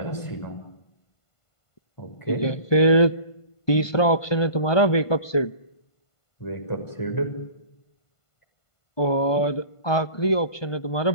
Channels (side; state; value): right; late; 1.5 ms